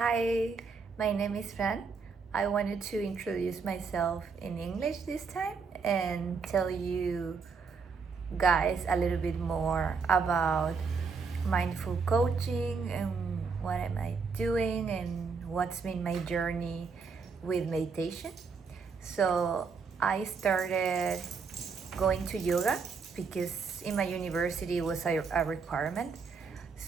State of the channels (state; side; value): quieter; left; 5.2 dB